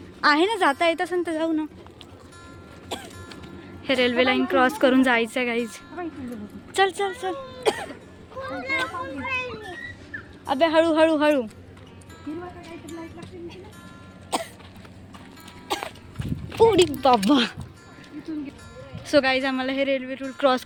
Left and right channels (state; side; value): identical; both; correlation 1.00